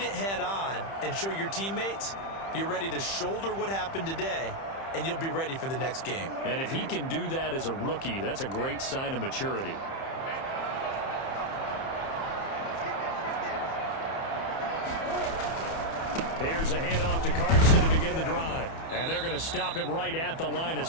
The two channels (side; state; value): right; late; 30 ms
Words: it head-on, and show your teammates you're ready to shoulder what happened today, and you'll be ready for the next game. And if he can do that as a rookie, that's a great sign of maturity. Here's a handoff to Carson to begin the drive. And they're going to stop him right at the line of